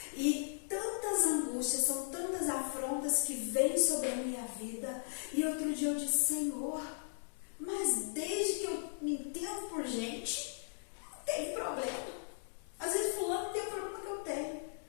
E tantas angústias, são tantas afrontas que vêm sobre a minha vida. E outro dia eu disse, Senhor, mas desde que eu me entendo por gente, não tem problema. Às vezes fulano tem o problema que eu tenho.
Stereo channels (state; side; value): silent; right; digital silence